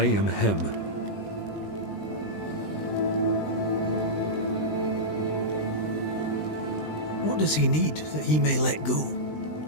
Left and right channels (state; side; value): late; right; 19 ms